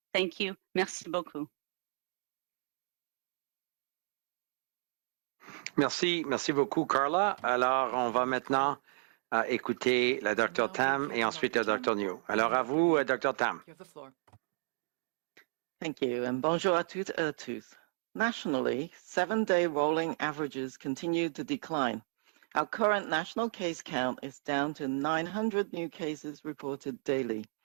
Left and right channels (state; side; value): silent; left; digital silence